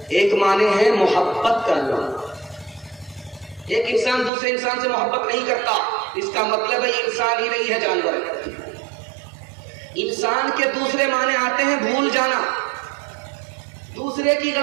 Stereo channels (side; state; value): left; drops out; at 4.3 s